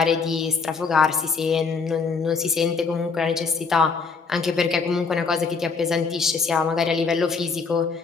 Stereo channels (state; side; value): quieter; right; 4.9 dB